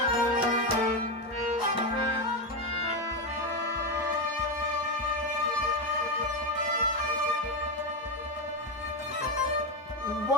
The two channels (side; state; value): both; normal; correlation 0.11